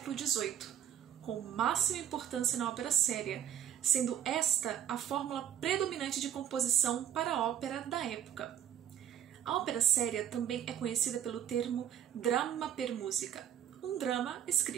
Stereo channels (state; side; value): quieter; left; 10.1 dB